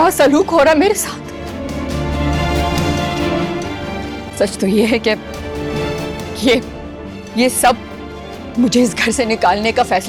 सलूक हो रहा है मेरे साथ। सच तो ये है कि ये सब मुझे इस घर से निकालने का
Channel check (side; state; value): both; identical; correlation 1.00